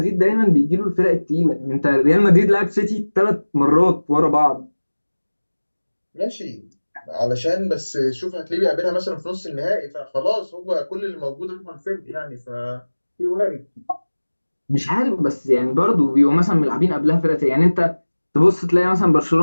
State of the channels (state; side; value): inverted; both; correlation -1.00